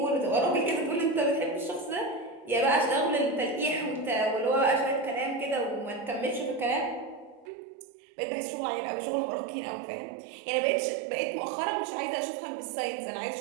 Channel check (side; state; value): left; drops out; at 7.5 s